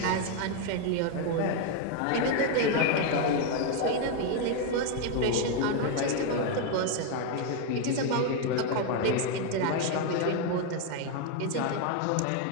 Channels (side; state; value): both; different; correlation 0.01